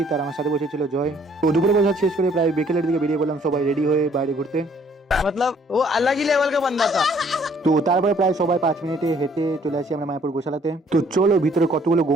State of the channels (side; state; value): both; normal; correlation 0.61